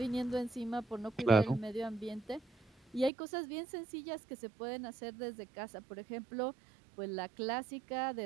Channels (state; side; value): drops out; left; at 3.1 s